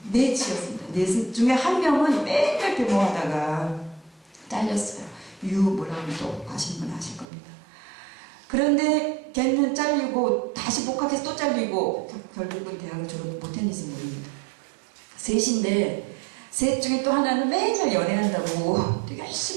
넷이었습니다. 넷 중에 한 명은 맨날 데모하다가 잘렸어요. 뭐라고 또 아시는 분 아실 겁니다. 그런데 걔는 잘리고 다시 복학해서 또 잘리고 결국은 대학을 졸업 못했는지 모릅니다. 셋인데 셋 중에 또 하나는 맨날 연애한다고 되게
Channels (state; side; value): drops out; left; at 7.2 s